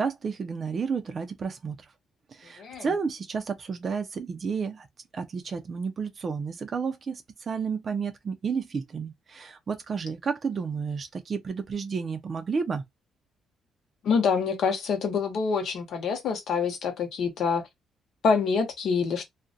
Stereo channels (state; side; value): normal; both; correlation 0.70